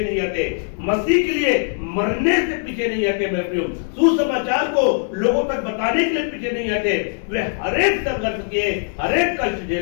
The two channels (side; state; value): right; silent; 64 dB below the other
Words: नहीं हटे, मसीह के लिए मरने से पीछे नहीं हटे मेरे प्रियो, सुसमाचार को लोगों तक बताने के लिए पीछे नहीं हटे। वे हर एक संघर्ष किए, हर एक कष्ट